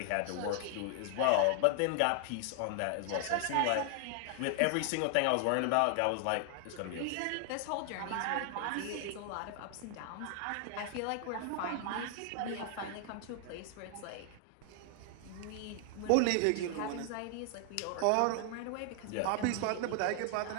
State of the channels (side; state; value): both; different; correlation 0.00